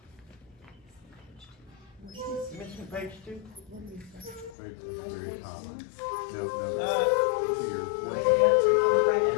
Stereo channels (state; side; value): drops out; right; at 4.5 s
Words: Missing page 2? Right, very top. No, no.